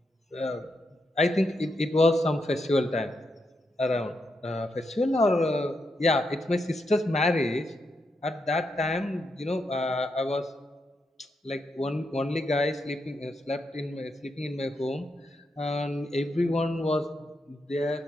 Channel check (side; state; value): both; normal; correlation 0.83